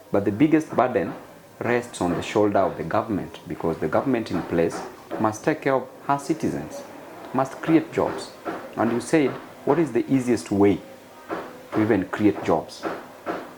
but the biggest burden rests on the shoulder of the government, because the government in place must take care of her citizens, must create jobs. And you said, what is the easiest way to even create jobs?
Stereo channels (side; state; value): both; identical; correlation 1.00